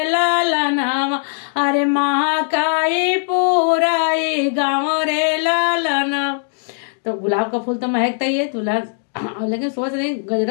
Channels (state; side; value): silent; right; 67 dB below the other